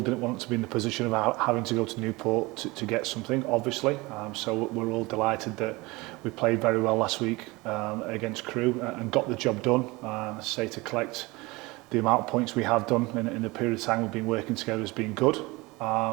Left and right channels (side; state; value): left; quieter; 23.1 dB